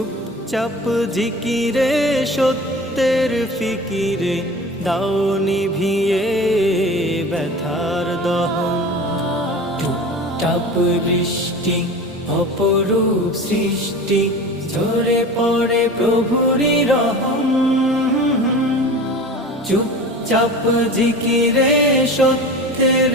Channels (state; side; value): normal; both; correlation 0.35